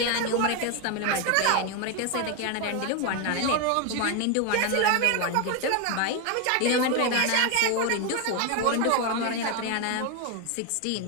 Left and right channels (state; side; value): different; both; correlation 0.01